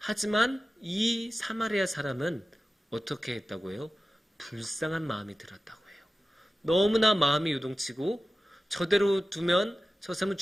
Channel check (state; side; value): normal; both; correlation 0.94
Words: 이 사마리아 사람은 어떻게 했다고 해요? 불쌍한 마음이 들었다고 해요. 너무나 마음이 요동치고 저대로 두면 저 사람은